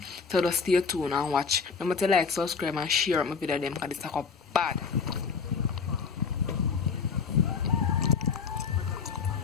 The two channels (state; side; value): quieter; right; 5.5 dB